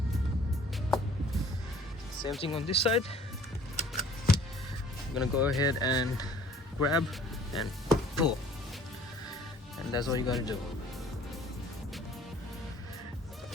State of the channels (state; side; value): normal; both; correlation 0.53